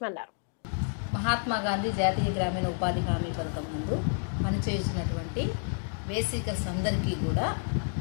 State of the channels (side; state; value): right; silent; 58 dB below the other